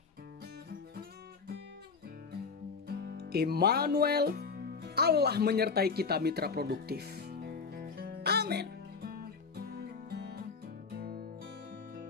Immanuel, Allah menyertai kita mitra produktif. Amin.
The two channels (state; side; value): quieter; right; 5.1 dB